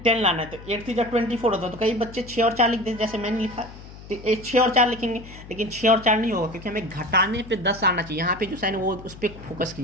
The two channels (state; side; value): noise; left; hum, 16 dB below the sound